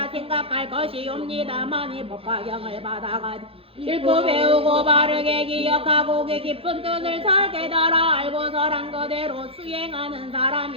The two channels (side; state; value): left; late; 0.27 ms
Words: 생각할 것이옵니다. 만일 법화경을 받아가 읽고 배우고 바르게 기억하고 그 깊은 뜻을 잘 깨달아 알고서란 그대로 수행하는